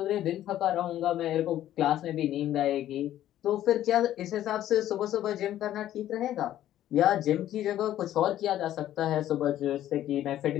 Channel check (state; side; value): quieter; right; 12.5 dB